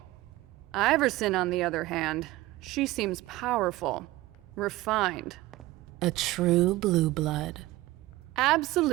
Iverson, on the other hand, she seems powerful, refined. A true blue blood.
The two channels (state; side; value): quieter; left; 18.1 dB